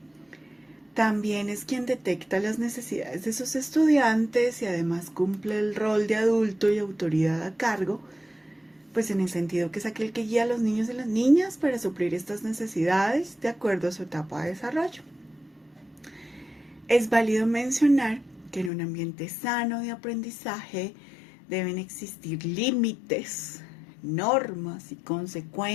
También es quien detecta las necesidades de sus estudiantes y además cumple el rol de adulto y autoridad a cargo, pues en el sentido que es aquel que guía a los niños y las niñas para suplir estas necesidades de acuerdo a su etapa de desarrollo. Es válido mencionar que en un ambiente sano de aprendizaje deben existir límites, normas y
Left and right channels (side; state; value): right; drops out; at 18.7 s